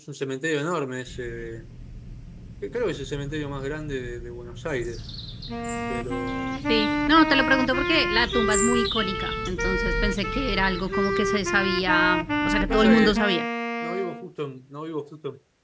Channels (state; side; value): identical; both; correlation 1.00